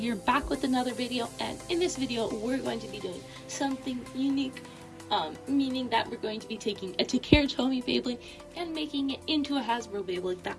back with another video, and in this video we're going to be doing something unique, meaning that we're going to be taking a Takara Tomy Beyblade and making it into a Hashbro Beyblade that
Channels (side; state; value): both; identical; correlation 1.00